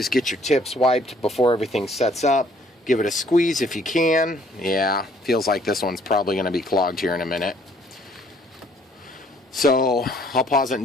get your tips wiped before everything sets up. Give it a squeeze if you can. Yeah, feels like this one's probably going to be clogged here in a minute. So I'll pause it and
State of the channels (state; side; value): normal; both; correlation 0.61